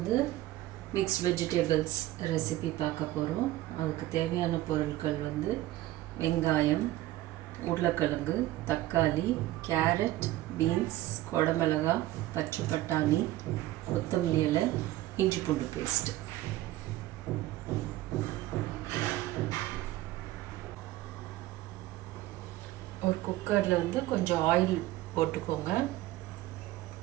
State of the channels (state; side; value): quieter; left; 15.9 dB